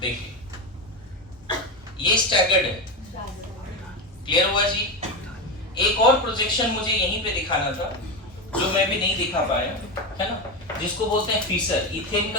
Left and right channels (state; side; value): normal; both; correlation 0.16